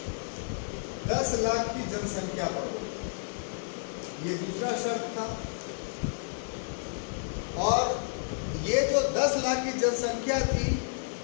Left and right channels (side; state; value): right; silent; digital silence